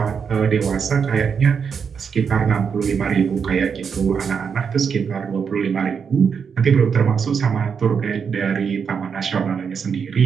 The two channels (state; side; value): quieter; left; 6.5 dB